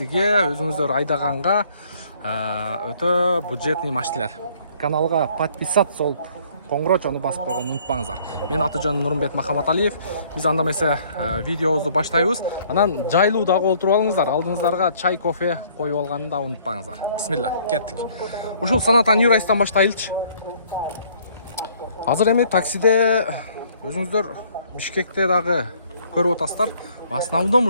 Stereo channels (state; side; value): inverted; both; correlation -0.60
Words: өзүңүздөр айдаганга өтө бюджетный машиналар. Каналга подписаться болуп коңгурочону басып койгонду унутпаңыздар. Мен аты-жөнүм Нурмбет Махаматалиев. Биз анда эмесе видеобузду баштайбыз. Анан жайлуу дагы олтуруп алыңыздар. Алдыңыздарга чай, кофе коюп алганды да унутпаңыздар. Бисмилла, кеттик. Ушул Саната New Rice'тан баштайлычы. Азыр эми таксиде өзүңүздөр Бишкекте дагы көрүп атасыздар. В основном